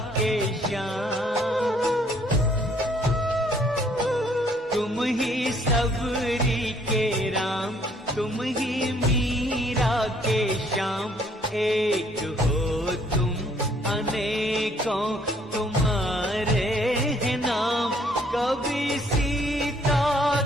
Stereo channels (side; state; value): both; normal; correlation 0.64